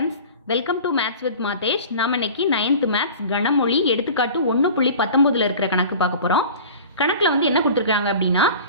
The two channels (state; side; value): inverted; both; correlation -0.40